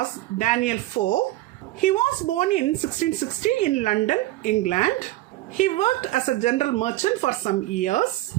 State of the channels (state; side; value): quieter; left; 16.6 dB